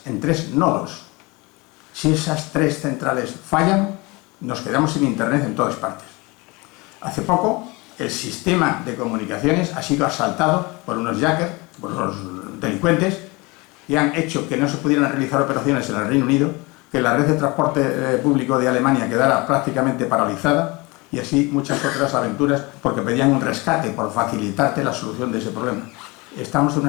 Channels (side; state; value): right; quieter; 25.2 dB